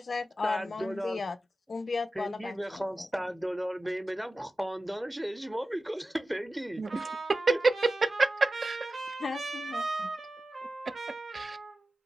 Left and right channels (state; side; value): normal; both; correlation 0.94